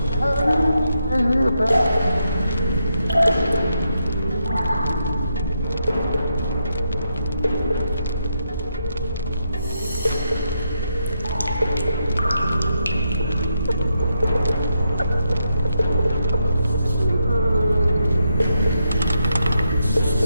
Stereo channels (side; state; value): both; inverted; correlation -0.82